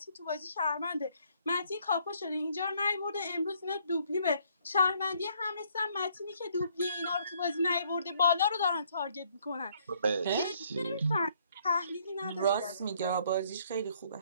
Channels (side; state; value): both; inverted; correlation -0.66